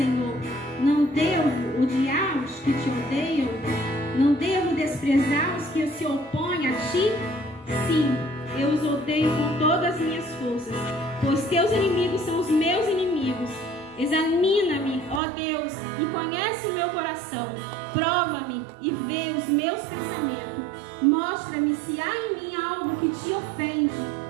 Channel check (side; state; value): left; drops out; at 15.2 s